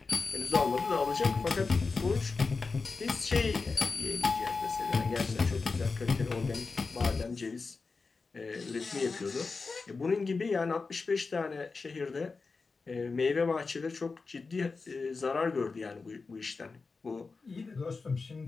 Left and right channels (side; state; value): right; quieter; 4.3 dB